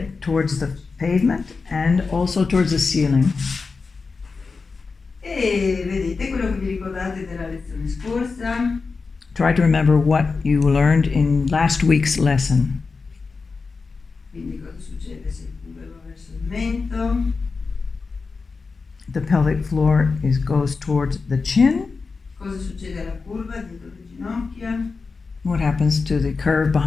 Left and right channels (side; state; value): right; quieter; 4.5 dB